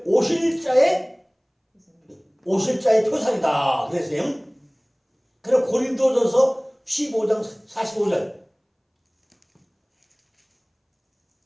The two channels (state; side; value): identical; both; correlation 1.00